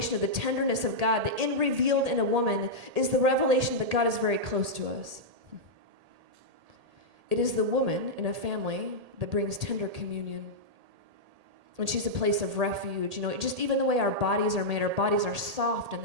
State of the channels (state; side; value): late; left; 1.8 ms